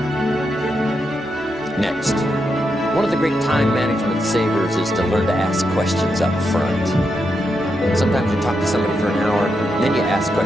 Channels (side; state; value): both; normal; correlation 0.84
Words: Next, one of the great time management savers is to learn to ask questions up front. Sometimes you talk to somebody for an hour, and then you ask